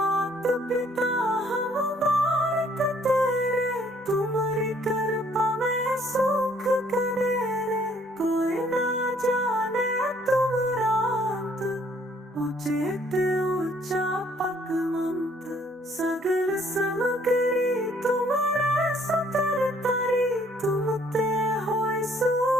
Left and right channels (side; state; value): both; normal; correlation 0.63